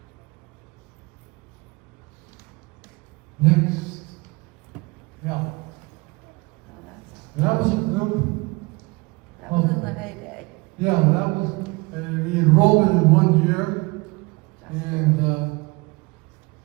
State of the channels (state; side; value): quieter; left; 25.3 dB